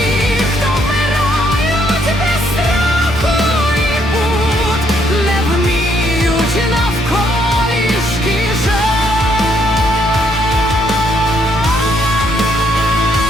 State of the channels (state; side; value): normal; both; correlation 0.71